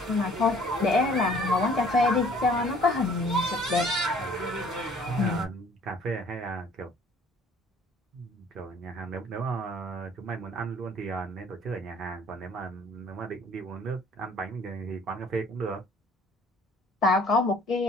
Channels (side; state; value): both; normal; correlation 0.55